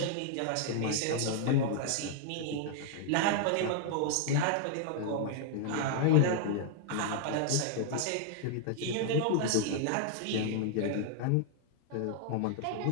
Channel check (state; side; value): different; both; correlation 0.00